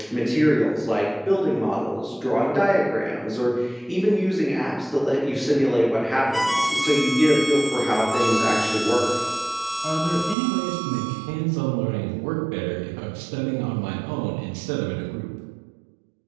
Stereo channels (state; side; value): drops out; left; at 10.4 s